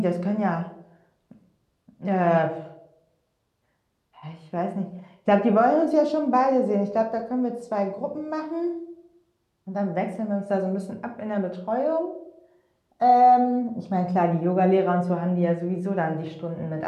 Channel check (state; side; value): identical; both; correlation 1.00